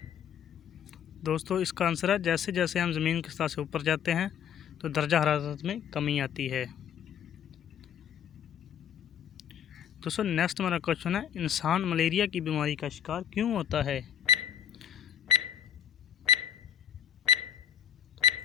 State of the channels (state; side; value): quieter; right; 8.9 dB